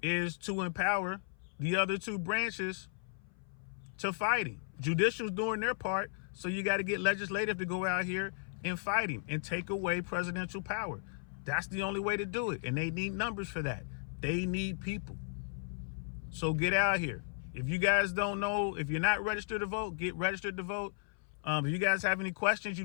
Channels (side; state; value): right; silent; 54 dB below the other